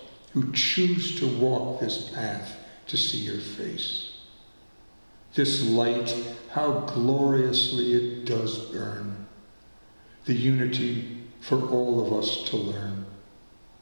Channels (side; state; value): both; inverted; correlation -1.00